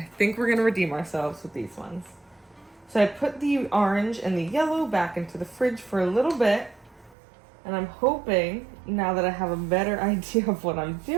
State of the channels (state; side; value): drops out; left; at 7.2 s